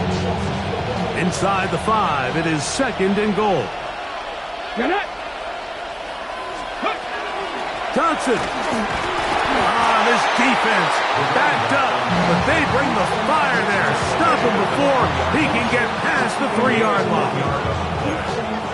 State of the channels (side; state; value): both; identical; correlation 1.00